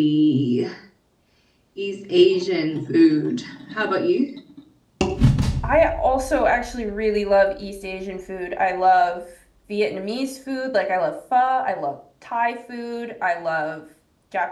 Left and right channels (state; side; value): identical; both; correlation 1.00